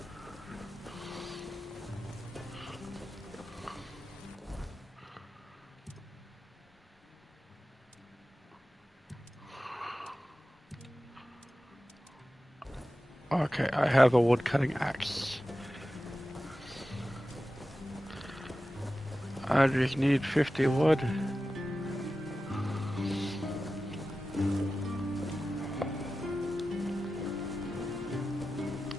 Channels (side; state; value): both; normal; correlation 0.94